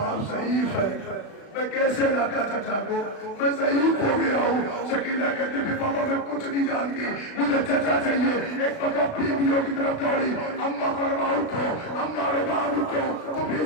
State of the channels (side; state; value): right; late; 36 ms